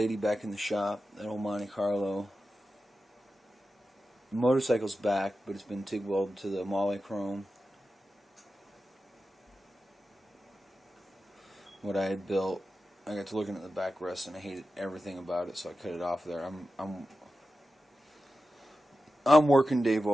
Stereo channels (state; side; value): normal; both; correlation 0.92